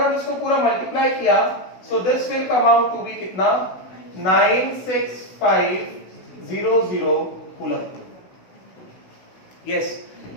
इसको पूरा मल्टीप्लाई किया, so this will come out to be कितना? 96500 कूलम। यस,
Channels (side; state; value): right; late; 16 ms